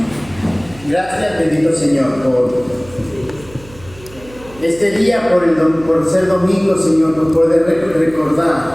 Gracias, bendito Señor, por este día, por ser domingo, Señor, por poder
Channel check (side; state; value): right; noise; hum, 20 dB below the sound